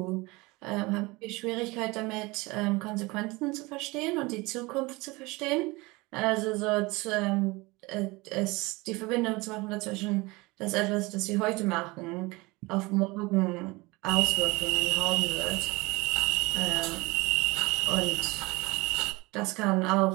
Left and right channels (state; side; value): quieter; left; 23.5 dB